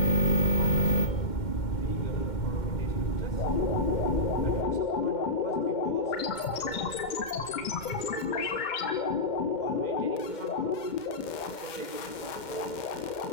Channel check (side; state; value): right; late; 2.1 ms